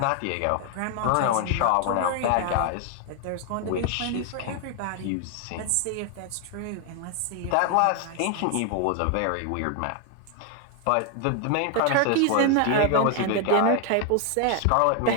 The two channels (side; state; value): both; different; correlation 0.00